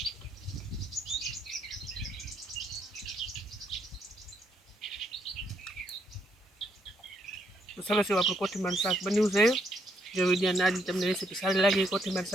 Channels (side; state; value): both; normal; correlation 0.74